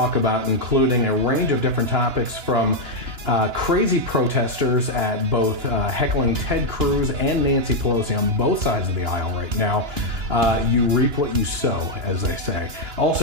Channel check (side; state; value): left; late; 2.9 ms